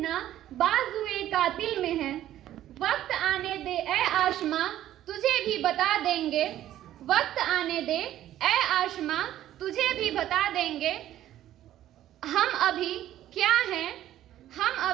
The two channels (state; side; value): quieter; left; 12.8 dB